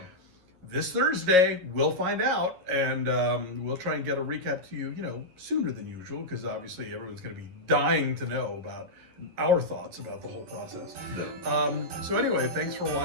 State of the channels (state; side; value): late; left; 11 ms